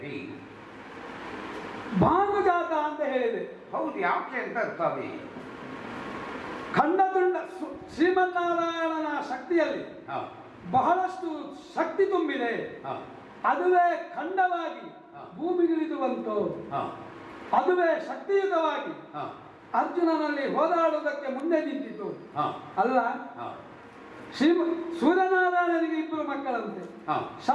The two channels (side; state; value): both; identical; correlation 1.00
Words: ಭಾನುಜಾತ ಅಂತ ಹೇಳಿದೆ. ಹೌದು, ಯಾಕೆ ಅಂತ ಸ್ವಾಮಿ? ಖಂಡತುಂಡ ಶ್ರೀಮನ್ನಾರಾಯಣನ ಶಕ್ತಿಯಲ್ಲಿ ಹ. ಬಹಳಷ್ಟು ಶಕ್ತಿ ತುಂಬಿದೆ. ಹ. ಅದುವೇ ಖಂಡವಾಗಿ ಹ. ಭೂಮಿಗಿಳಿದು ಬಂತು. ಹ. ಅದುವೇ ಶಕ್ತಿಯುತವಾಗಿ ಹ. ಅರ್ಜುನನಲ್ಲಿ ಹೋರಾಡುವುದಕ್ಕೆ ಮುಂದೆ ನಿಂತಿತು. ಹ. ಅಲ್ಲ, ಹ. ಶ್ರೀ ಸೂರ್ಯನಾರಾಯಣನಿಗೆ ಇಬ್ಬರು ಮಕ್ಕಳಂತೆ, ಹ.